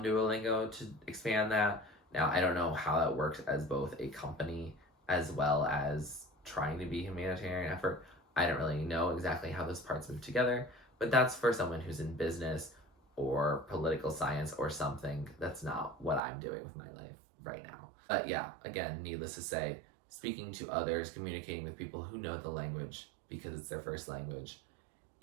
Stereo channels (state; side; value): drops out; left; at 16.2 s